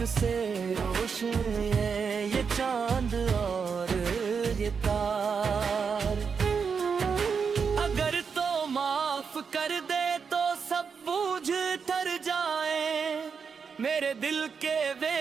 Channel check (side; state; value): left; quieter; 6.0 dB